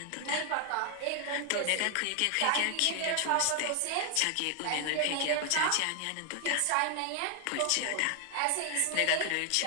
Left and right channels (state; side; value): different; both; correlation 0.00